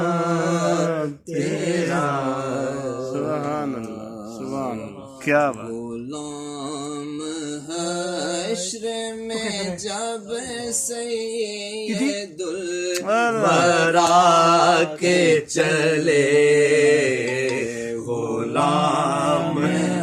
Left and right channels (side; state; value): both; identical; correlation 1.00